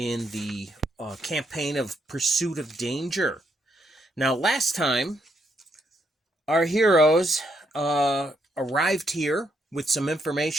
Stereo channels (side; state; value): both; normal; correlation 0.76